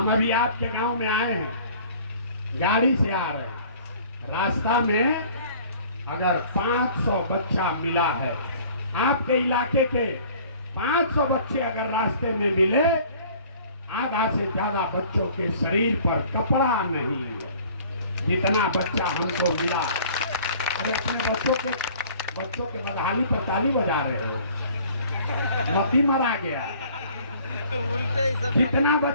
अभी आपके गांव में आए हैं, गाड़ी से आ रहे हैं, रास्ता में अगर 500 बच्चा मिला है, आपके इलाके के 500 बच्चे अगर रास्ते में मिले, आधा से ज्यादा बच्चों के शरीर पर कपड़ा नहीं है, जितना बच्चा हमको मिला। अरे अपने बच्चों के बदहाली पर ताली बजा रहे हो, मती मरा गया। जितना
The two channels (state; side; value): inverted; both; correlation -0.51